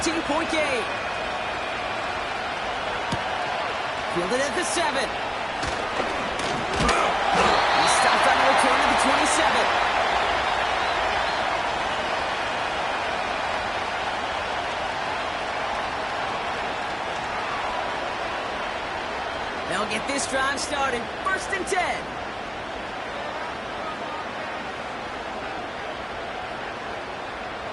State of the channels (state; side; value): identical; both; correlation 1.00